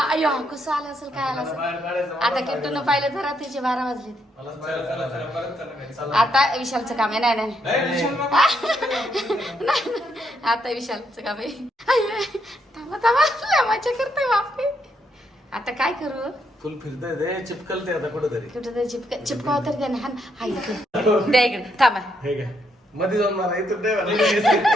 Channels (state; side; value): normal; both; correlation 0.76